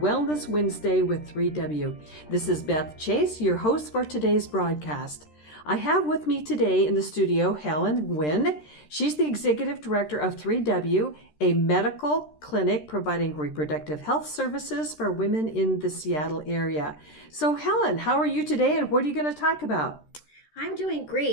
Wednesday with 3W. This is Beth Chase, your host for today's broadcast. I have with me today in the studio Helen Nguyen. She's the executive director of 3W, a medical clinic providing reproductive health services for women in the Seattle area. So Helen, how are you today and what are you going to talk about? I'm doing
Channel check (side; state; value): right; late; 13 ms